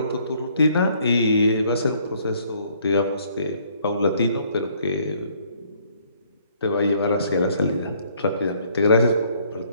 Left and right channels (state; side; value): inverted; both; correlation -0.63